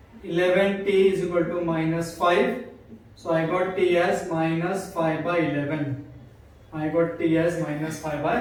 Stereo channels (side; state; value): both; identical; correlation 1.00